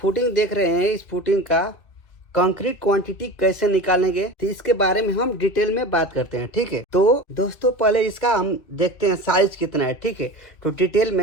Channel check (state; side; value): late; right; 2.3 ms